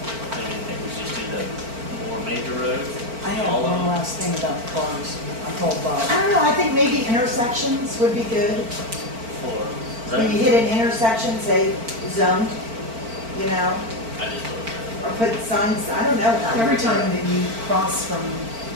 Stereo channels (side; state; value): left; late; 4.4 ms